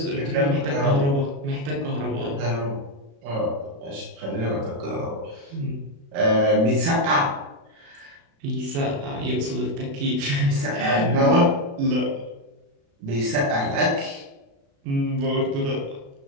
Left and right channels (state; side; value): late; left; 36 ms